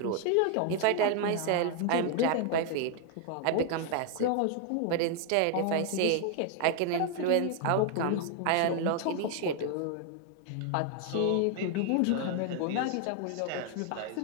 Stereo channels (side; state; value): both; different; correlation 0.00